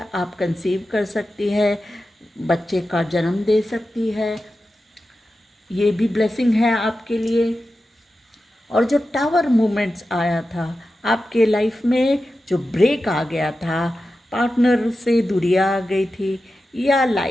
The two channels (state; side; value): normal; both; correlation 0.92